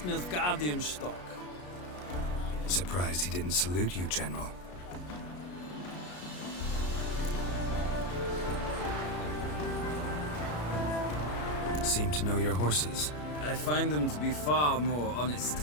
Nilfgaardian stock. Surprised he didn't salute you, General. Seem to know your horses. I find them to be far more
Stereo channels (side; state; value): right; late; 33 ms